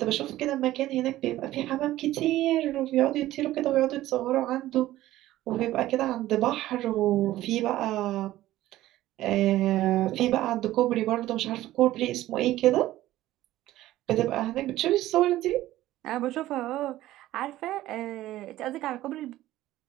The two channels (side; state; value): left; quieter; 15.2 dB